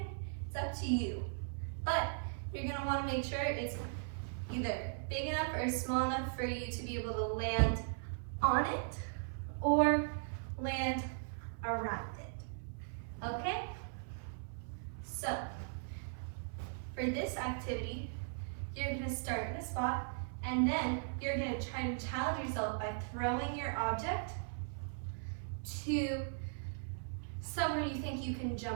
It's up to you. But you're gonna want to make sure it's either big enough or small enough for you to be able to land on it or land around it. Okay? So, for this activity, you're going to start in a spot and then you're going to try to challenge yourself by throwing your object to somewhere you think you can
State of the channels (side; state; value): left; silent; 52 dB below the other